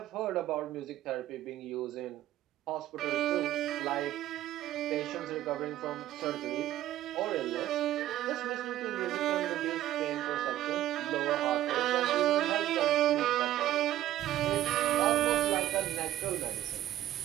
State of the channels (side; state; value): left; quieter; 13.4 dB